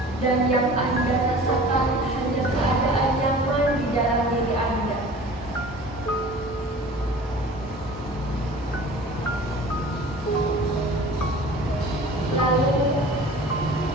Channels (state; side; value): normal; both; correlation 0.43